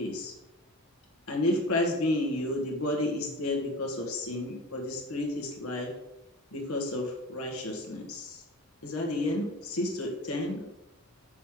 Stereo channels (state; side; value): normal; both; correlation 0.36